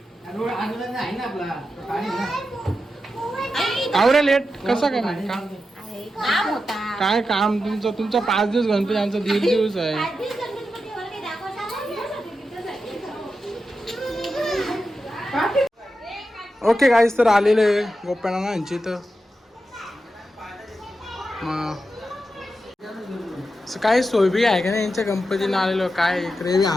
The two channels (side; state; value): both; normal; correlation 0.89